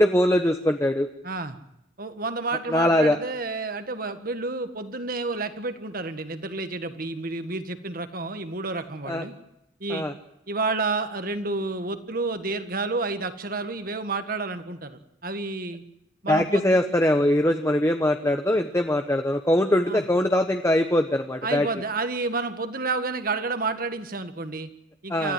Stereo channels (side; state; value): both; normal; correlation 0.59